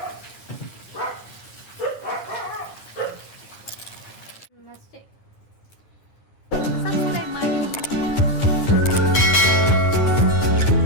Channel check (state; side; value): late; right; 9.7 ms